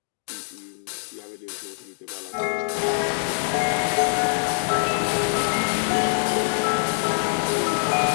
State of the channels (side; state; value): right; silent; digital silence